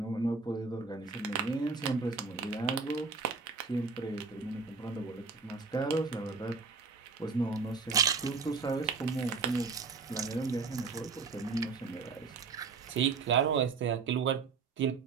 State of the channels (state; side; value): quieter; left; 4.8 dB